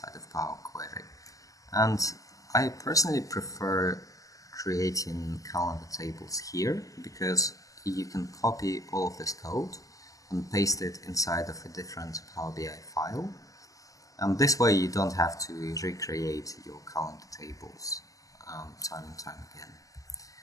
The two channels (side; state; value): right; late; 0.17 ms